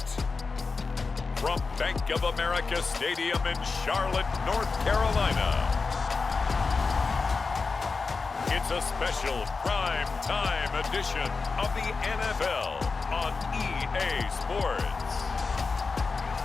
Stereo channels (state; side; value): quieter; right; 4.4 dB